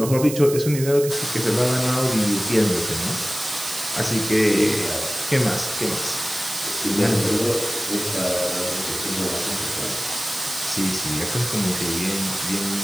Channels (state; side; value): noise; right; hiss, 8 dB below the sound